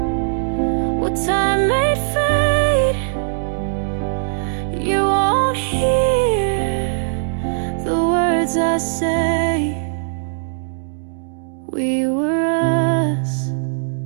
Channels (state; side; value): silent; left; 66 dB below the other